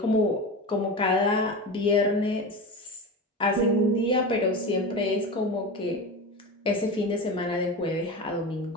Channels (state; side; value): normal; both; correlation 0.25